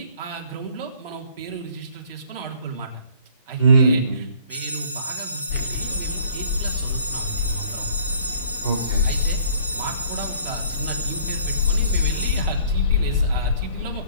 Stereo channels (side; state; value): both; inverted; correlation -0.53